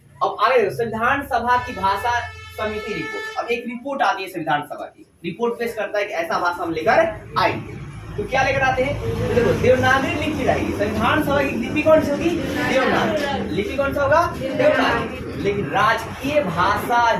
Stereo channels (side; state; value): both; identical; correlation 1.00